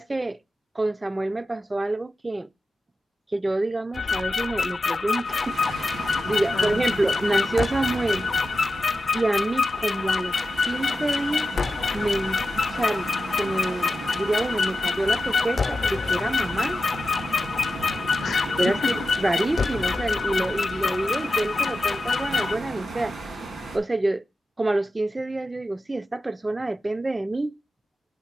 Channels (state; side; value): normal; both; correlation 0.91